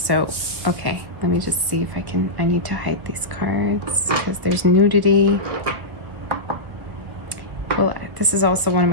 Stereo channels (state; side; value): late; left; 1.5 ms